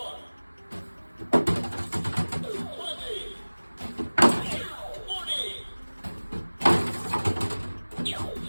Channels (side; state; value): both; inverted; correlation -1.00